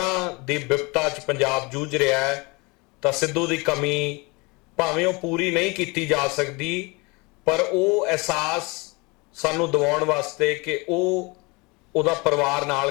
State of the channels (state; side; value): quieter; right; 27.0 dB